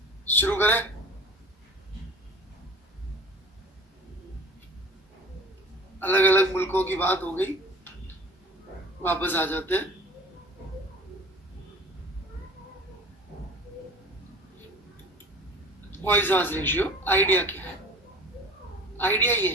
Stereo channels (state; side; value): normal; both; correlation 0.42